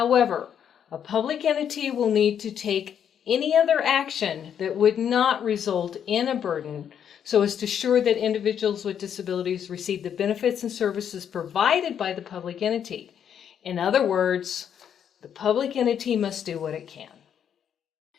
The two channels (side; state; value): right; quieter; 8.6 dB